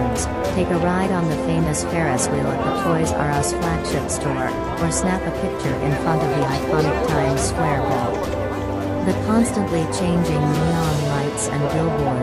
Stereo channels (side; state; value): both; identical; correlation 1.00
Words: take a ride on the famous Ferris wheel at the Toys R Us flagship store, or snap a picture in front of the iconic Times Square Ball. The constantly changing neon lights and